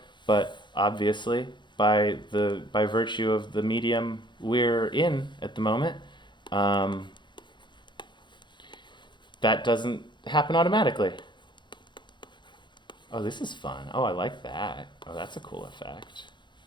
but obviously, by virtue of the medium we're in at the moment, that doesn't happen automatically. Oh, this is fun. Oh, I like that. Oh, that's a cool effect.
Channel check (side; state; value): right; late; 0.22 ms